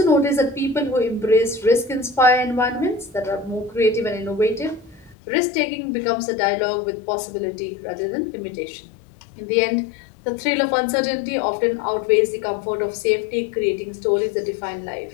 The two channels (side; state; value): right; drops out; at 5.2 s